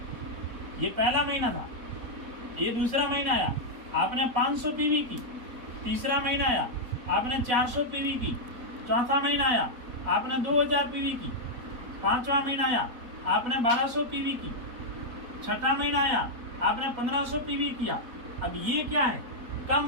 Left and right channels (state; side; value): late; left; 4.0 ms